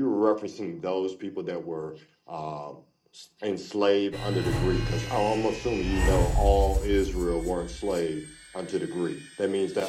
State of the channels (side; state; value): both; identical; correlation 1.00